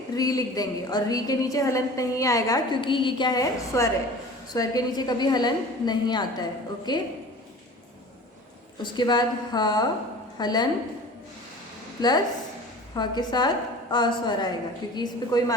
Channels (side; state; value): both; normal; correlation 0.40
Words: री लिख देंगे। और री के नीचे हलंत नहीं आएगा क्योंकि ये क्या है? स्वर है। स्वर के नीचे कभी हलंत नहीं आता है। ओके। उसके बाद ह हलंत प्लस ह के साथ अ स्वर आएगा क्योंकि इस पे कोई